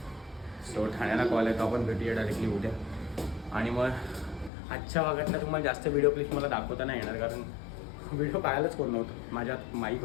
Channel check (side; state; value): right; drops out; at 4.5 s